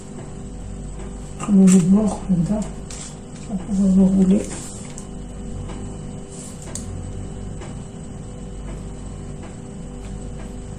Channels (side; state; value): both; identical; correlation 1.00